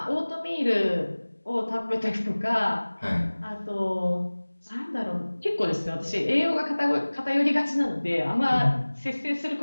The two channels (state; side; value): inverted; both; correlation -1.00